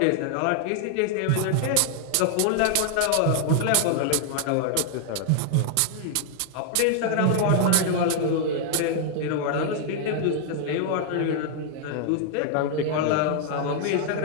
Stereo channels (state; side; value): different; both; correlation 0.00